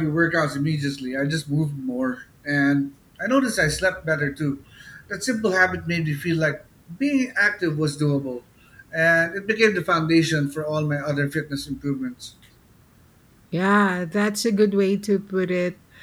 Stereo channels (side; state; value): both; identical; correlation 1.00